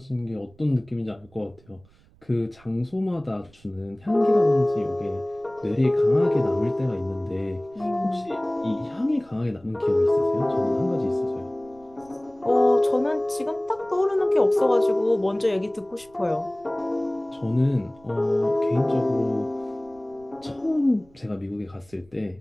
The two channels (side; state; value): right; noise; rumble, 28 dB below the sound